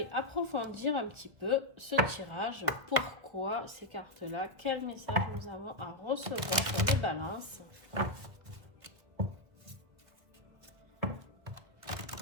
approfondir un petit peu ce tirage. Pourquoi ces cartes-là? Quel message nous avons à recevoir sur les balances?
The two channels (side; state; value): left; late; 1.4 ms